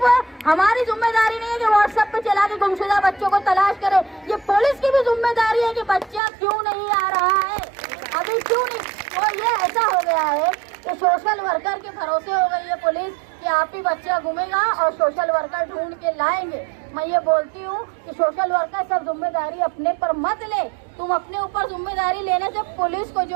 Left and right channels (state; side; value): drops out; left; at 6.2 s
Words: हमारी जिम्मेदारी नहीं है कि व्हाट्सएप पे चला के गुमशुदा बच्चों को तलाश करे, ये पुलिस की भी जिम्मेदारी है कि बच्चा क्यों नहीं आ रहा है, अभी क्यों नहीं। तो ये ऐसा हो गया है कि सोशल वर्कर के भरोसे हो गई है पुलिस कि आप ही बच्चा घूमेगा और सोशल वर्कर ढूंढ के लाएंगे। मैं ये बोलती हूँ कि सोशल वर्कर सब जिम्मेदारी अपने पर मत ले, तुम अपने ऊपर जिम्मेदारी लेने से पुलिस को